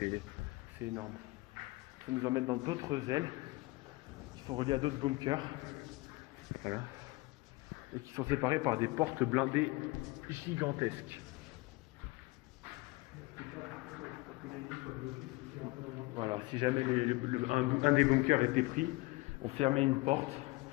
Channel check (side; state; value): right; quieter; 22.6 dB